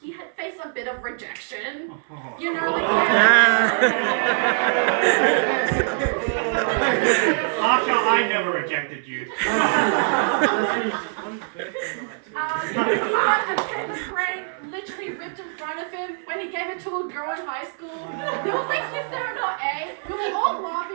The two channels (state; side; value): silent; left; 63 dB below the other